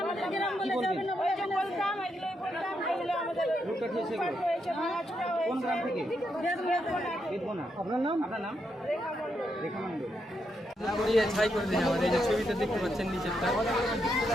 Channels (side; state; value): both; normal; correlation 0.81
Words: আমাদের গ্রাম বলে যাবে না, বলতাম এগুলোই বলতাম, এগুলো আমাদের হয়েছে, ভাঙাচোরা হয়েছে। কোন গ্রাম থেকে? বেদবনা। আপনার নাম? আপনার নাম? রেখা মণ্ডল। ছাই করে দিন আমাদের, এই যে ছবিটা দেখতে পাচ্ছেন নিচেরটা।